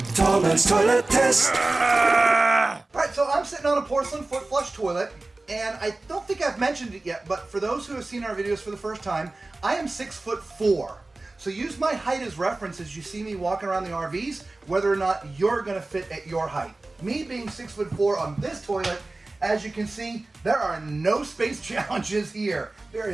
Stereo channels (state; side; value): quieter; left; 3.1 dB